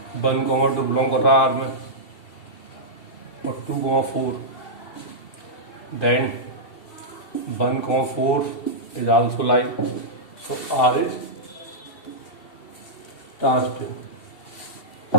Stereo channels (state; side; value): late; right; 2.7 ms